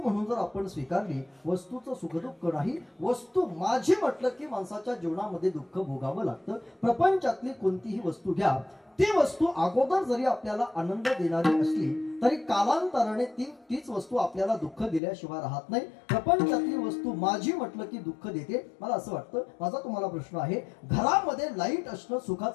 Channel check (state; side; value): drops out; right; at 15.0 s